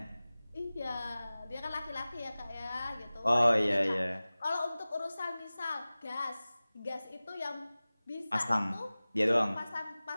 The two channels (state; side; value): inverted; both; correlation -0.98